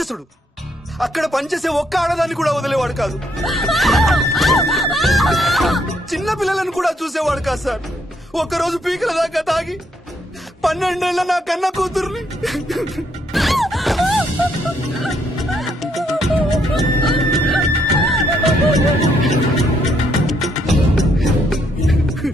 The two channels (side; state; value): both; normal; correlation 0.73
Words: అక్కడ పనిచేసే ఒక్క ఆడదాన్ని కూడా వదిలేవాడు కాదు. చిన్న పిల్లలను కూడా చూసేవాడు కాదు సార్. ఒక్కరోజు పీకల దాకా తాగి 12 ఏళ్ల నా కన్న కూతుర్ని